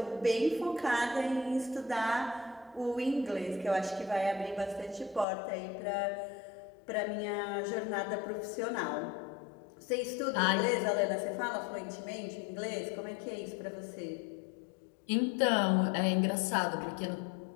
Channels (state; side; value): drops out; right; at 5.2 s